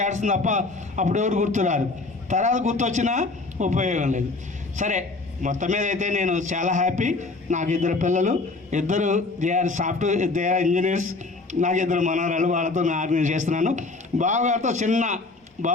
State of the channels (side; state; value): right; quieter; 3.5 dB